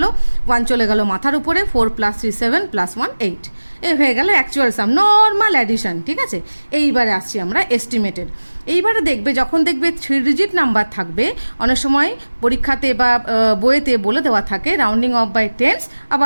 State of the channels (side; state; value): both; inverted; correlation -1.00